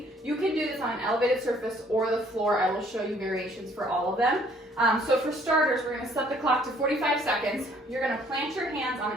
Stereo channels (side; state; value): both; normal; correlation 0.61